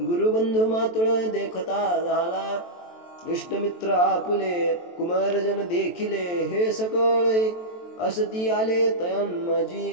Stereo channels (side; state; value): right; late; 23 ms